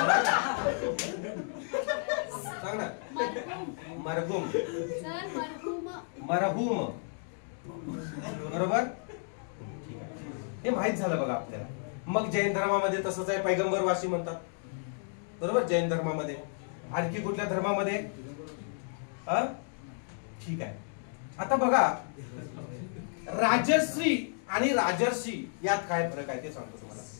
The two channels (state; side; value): silent; right; 56 dB below the other